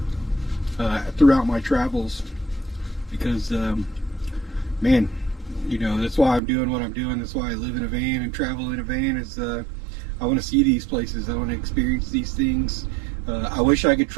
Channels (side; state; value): left; drops out; at 6.4 s